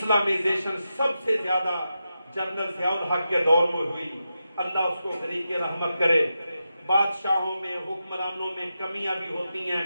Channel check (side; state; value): both; inverted; correlation -0.89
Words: سب سے زیادہ جنرل ضیاء الحق کے دور میں ہوئی، اللہ اس کو غریق رحمت کرے۔ بادشاہوں میں، حکمرانوں میں کمیاں بھی ہوتی ہیں،